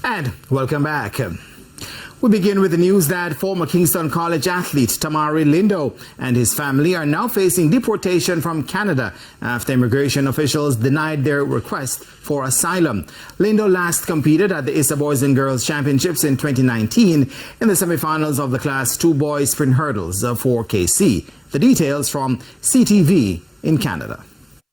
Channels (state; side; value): identical; both; correlation 1.00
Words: right, welcome back. We begin with the news that former Kingston College athlete Tamari Lindo and his family are now facing deportation from Canada after immigration officials denied their request for asylum. Lindo last competed at the ISA Boys and Girls Championships in 2019 in the semifinals of the Class 2 Boys Sprint Hurdles for KC. The details from CTV in Canada.